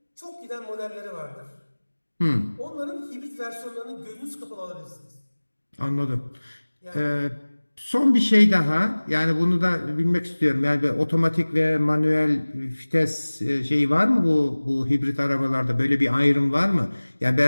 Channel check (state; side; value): inverted; both; correlation -1.00